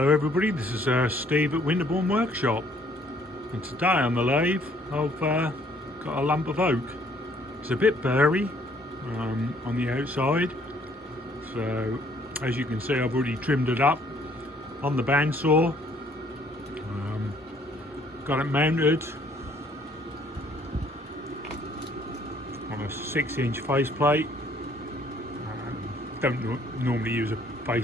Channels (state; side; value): normal; both; correlation 0.62